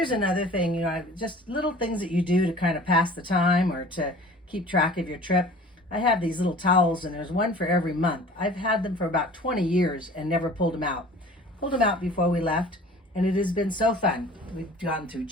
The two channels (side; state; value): both; normal; correlation 0.45